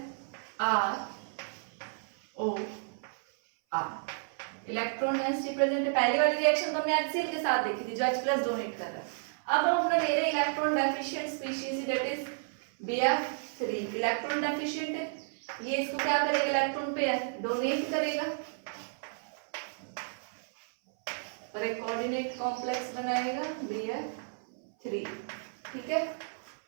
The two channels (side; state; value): left; silent; 56 dB below the other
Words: ROR. इलेक्ट्रॉन डेंसिटी प्रेजेंट है. पहली वाली रिएक्शन तो हमने HCl के साथ देखी थी जो H+ डोनेट कर रहा है. अब हम अपना ले रहे हैं electron deficient species, that is BF3. Electron deficient है, ये इसको क्या करेगा? इलेक्ट्रॉन पेयर डोनेट करेगा और एक कोऑर्डिनेट कॉम्प्लेक्स बनाएगा BF3. ठीक है,